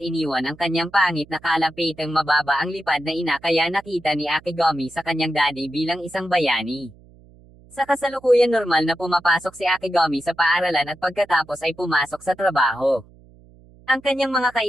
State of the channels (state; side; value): noise; right; hum, 25 dB below the sound